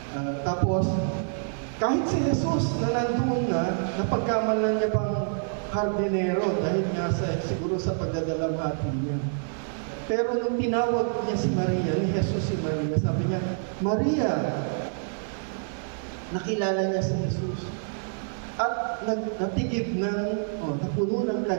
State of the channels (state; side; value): silent; left; 60 dB below the other